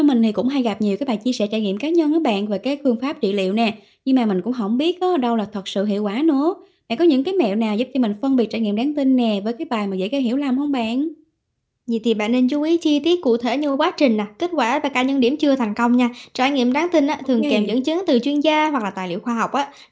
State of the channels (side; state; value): both; identical; correlation 1.00